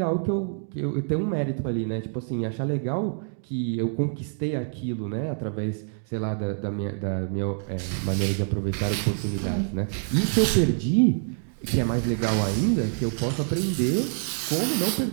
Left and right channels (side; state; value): left; silent; 61 dB below the other